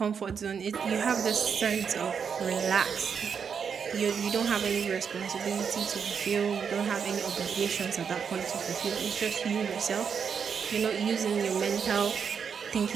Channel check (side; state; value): left; quieter; 6.7 dB